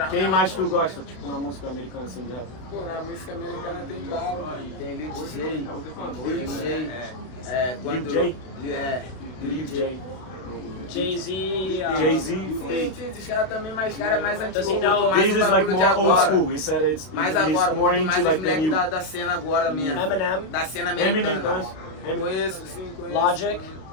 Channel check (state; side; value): late; right; 32 ms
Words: Quem mais tu gosta, tipo, na música americana, assim, de rap? Pô, na música americana tem bala, mano. Tem Lil J, quando... Lil J? Lil J. Jay-Z. Jay-Z. Tem os caras também, mais cara mais antigo. Does he know- Mais This o is like bagulho de more old agora. school. He said it's Mais he's agora, more muito into mais os like the moleques new. da cena agora mesmo. Eminem. Da cena Eminem, americana. Eminem. Conheço, sim, conheço.